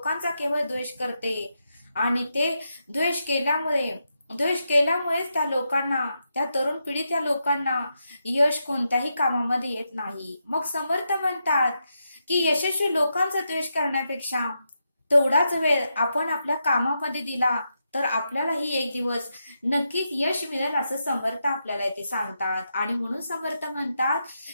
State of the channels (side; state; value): both; inverted; correlation -0.85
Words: केवळ द्वेष करते. आणि ते द्वेष केल्यामुळेच त्या तरुण पिढी त्या लोकांना यश कोणत्याही कामामध्ये येत नाही. मग समर्थ म्हणतात की यशस्वी लोकांचा द्वेष करण्यापेक्षा तेवढाच वेळ आपण आपल्या कामामध्ये दिला तर आपल्यालाही एक दिवस नक्कीच यश मिळेल, असं समर्थ आपल्याला इथे सांगतात. आणि म्हणून समर्थ म्हणतात